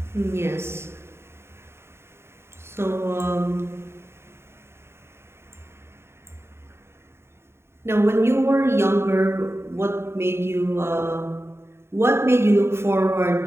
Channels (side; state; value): left; late; 0.12 ms